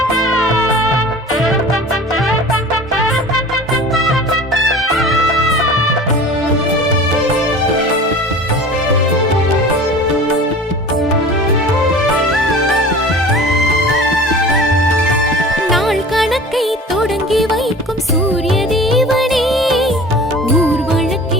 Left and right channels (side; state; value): both; normal; correlation 0.40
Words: நாள் கணக்கை தொடங்கி வைக்கும் சூரிய தேவனே, ஊர்